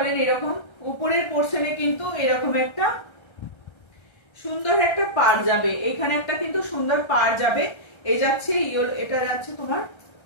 এরকম উপরের পোর্শনে কিন্তু এরকম একটা সুন্দর একটা পাড় যাবে, এখানে একটা কিন্তু সুন্দর পাড় যাবে। এই যাচ্ছে ইয়েলো, এটা যাচ্ছে তোমার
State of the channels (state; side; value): late; right; 1.3 ms